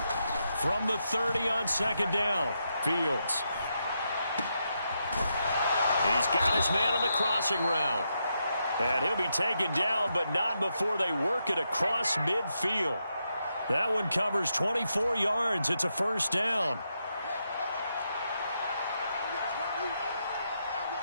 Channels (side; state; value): both; inverted; correlation -0.83